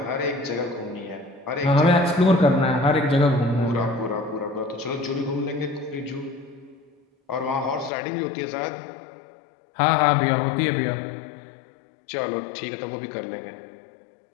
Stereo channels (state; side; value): drops out; right; at 7.9 s